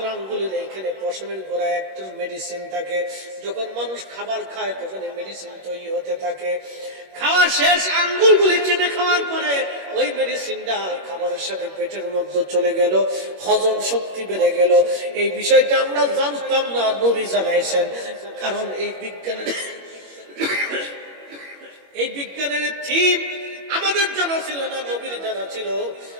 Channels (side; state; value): left; late; 21 ms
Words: আঙ্গুলের এইখানে পশমের গোড়ায় একটা মেডিসিন থাকে, যখন মানুষ খাবার খায় তখন এই মেডিসিন তৈরি হতে থাকে। খাওয়া শেষ, আঙ্গুলগুলি চেটে খাওয়ার পরে ওই মেডিসিনটা খাবারের সাথে পেটের মধ্যে চলে গেল, হজম শক্তি বেড়ে গেল। এই বিষয়টা আমরা জানতাম না, নবী জানাইছেন। কারণ এই বিজ্ঞানের থিম আমাদের জানা ছিল না, নবীর জানা ছিল।